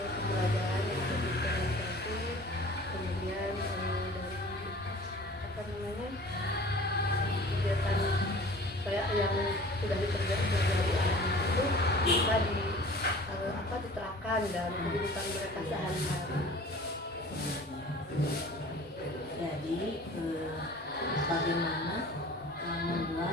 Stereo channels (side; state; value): both; normal; correlation 0.45